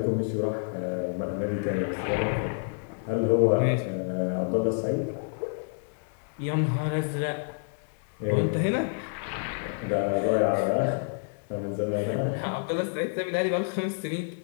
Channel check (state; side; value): silent; right; digital silence